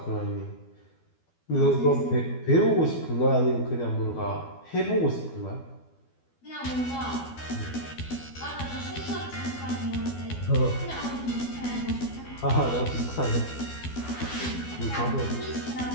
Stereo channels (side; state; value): right; late; 12 ms